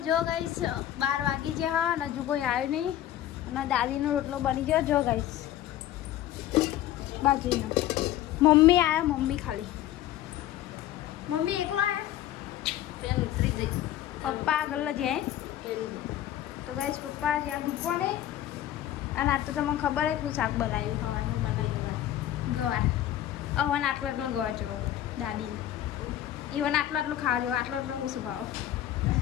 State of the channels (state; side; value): quieter; right; 12.6 dB